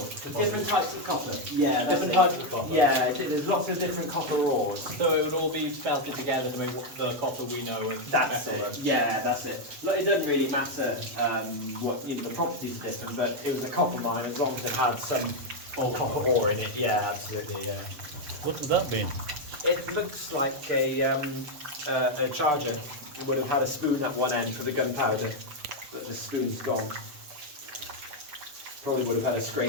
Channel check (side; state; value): left; late; 7.3 ms